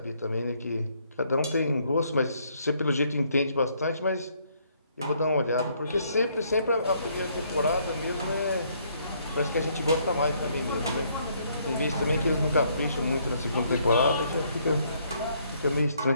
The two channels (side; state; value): both; inverted; correlation -0.69